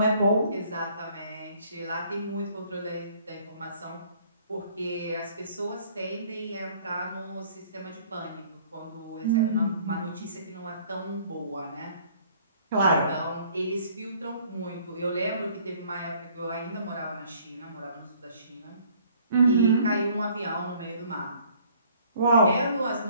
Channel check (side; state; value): both; inverted; correlation -0.58